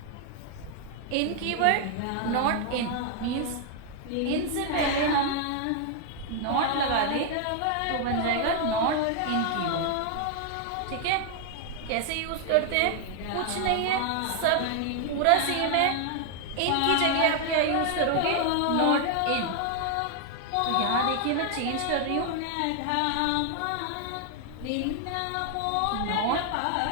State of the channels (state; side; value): different; both; correlation 0.00